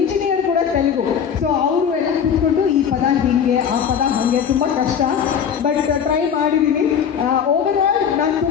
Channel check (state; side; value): quieter; right; 7.7 dB